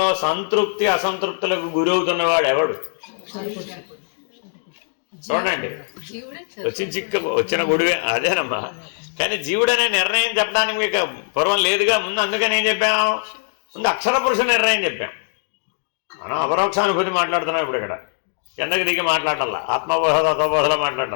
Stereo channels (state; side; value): silent; right; digital silence